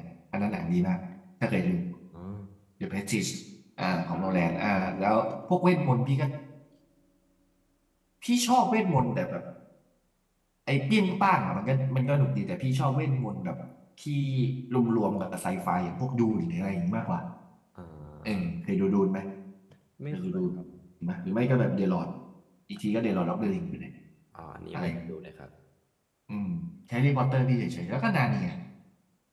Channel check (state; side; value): identical; both; correlation 1.00